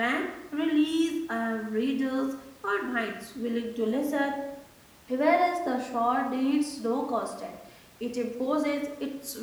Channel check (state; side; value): identical; both; correlation 1.00